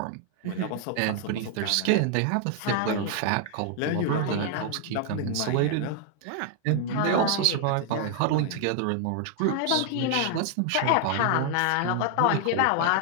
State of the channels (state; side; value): different; both; correlation 0.00